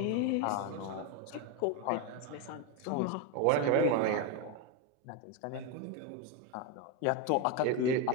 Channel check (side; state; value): both; different; correlation 0.03